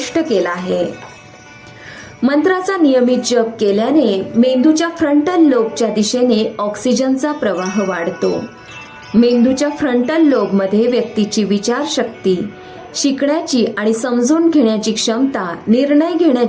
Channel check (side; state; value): both; identical; correlation 1.00